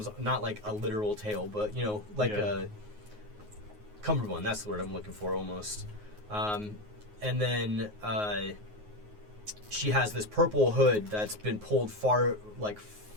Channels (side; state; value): left; late; 9.5 ms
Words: not like a literal tail, but you know, like a cummerbund. That's the word I'm looking for, almost. And then she has this purple hood that's been pulled far